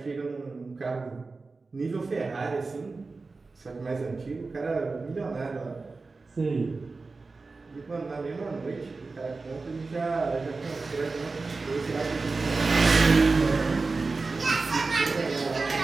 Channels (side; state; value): left; quieter; 3.9 dB